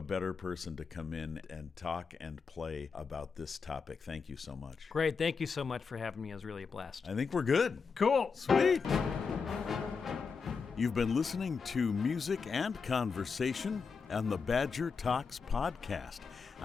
better person to come in and talk and play about this topic. Thank you so much. Great. Thank you so much for having me. It was really a blast. I think we're good. Cool. Sweet. You've been listening to Music and Conversation on the Badger Talks podcast.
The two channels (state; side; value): quieter; right; 5.3 dB